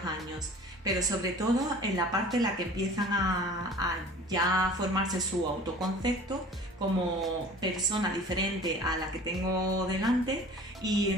años, pero sobre todo en la parte en la que empiezan a ya formarse su autoconcepto como persona diferente a la que tengo delante y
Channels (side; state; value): both; normal; correlation 0.44